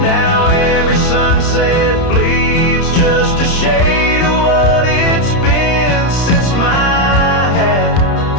Now every sunset bleeds just a shade of what it's been since my hat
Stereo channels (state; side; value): late; right; 30 ms